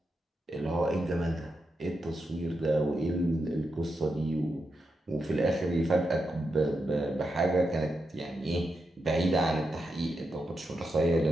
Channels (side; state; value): both; normal; correlation 0.86